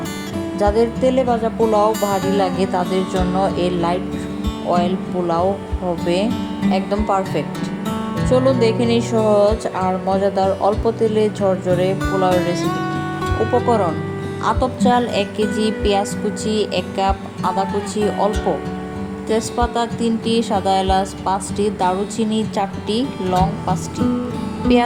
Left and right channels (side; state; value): both; identical; correlation 1.00